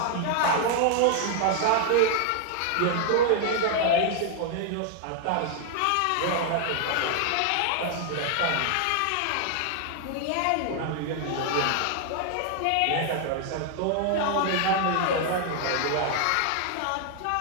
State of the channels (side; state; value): both; different; correlation 0.00